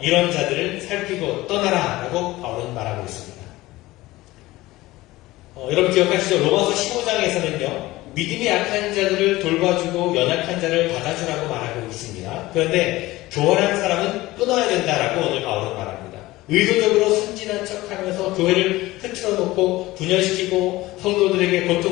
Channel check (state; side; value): quieter; right; 18.5 dB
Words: 이런 자들을 살피고 떠나라 라고 바울은 말하고 있습니다. 여러분 기억하시죠? 로마서 15장에서는요, 믿음이 약한 자들을 돌봐주고 연약한 자를 받아주라고 말하고 있습니다. 그런데 교활한 사람은 끊어야 된다라고 오늘 바울은 말합니다. 의도적으로 순진한 척하면서 교회를 흐트러 놓고 분열시키고 성도들에게